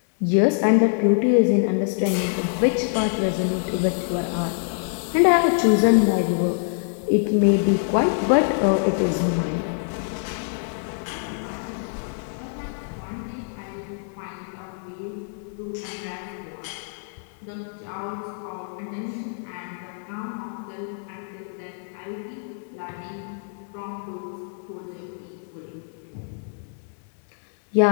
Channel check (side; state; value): right; silent; 62 dB below the other